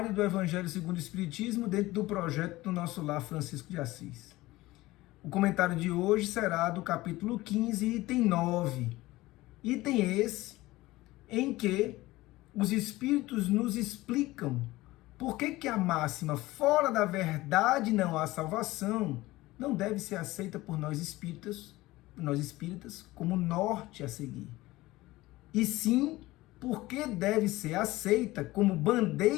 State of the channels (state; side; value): quieter; right; 18.6 dB